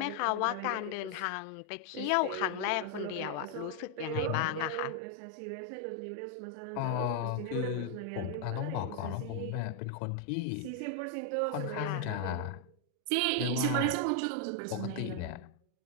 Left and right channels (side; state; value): both; different; correlation 0.00